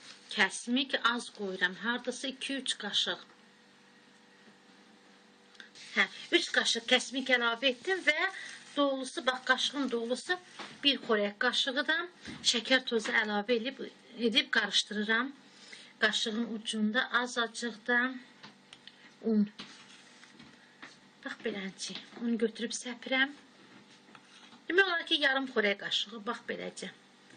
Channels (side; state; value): both; identical; correlation 1.00